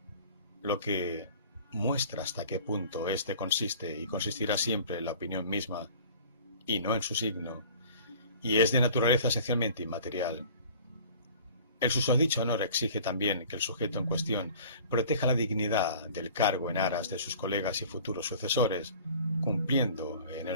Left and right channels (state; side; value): inverted; both; correlation -0.46